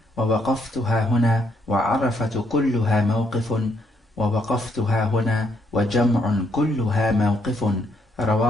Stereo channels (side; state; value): both; normal; correlation 0.73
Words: ووقفتها هنا وعرفة كلها موقف ووقفتها هنا وجمع كلها موقف